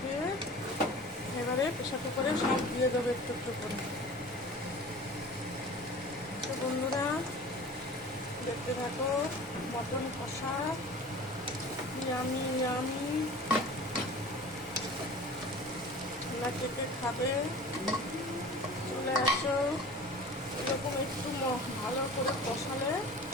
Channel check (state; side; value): normal; both; correlation 0.40